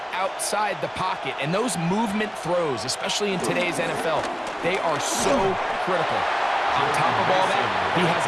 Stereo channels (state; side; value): identical; both; correlation 1.00